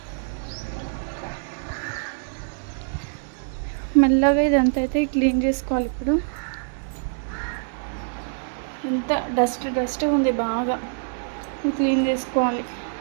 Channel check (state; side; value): silent; left; digital silence